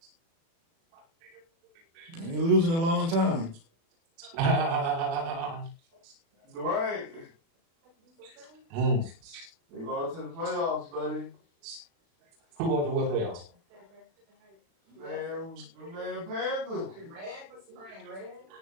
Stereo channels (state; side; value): late; left; 36 ms